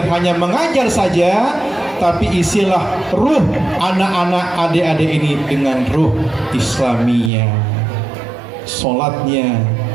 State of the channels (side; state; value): left; drops out; at 7.3 s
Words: hanya mengajar saja, tapi isilah ruh anak-anak adik-adik ini dengan ruh Islamiyah, sholatnya,